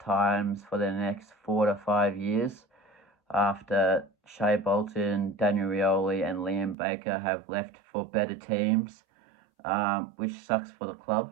for the next 4 to 5 years after Shea Bolton, Daniel Rioli and Liam Baker have left for better teams, which sucks for the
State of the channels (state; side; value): drops out; left; at 6.8 s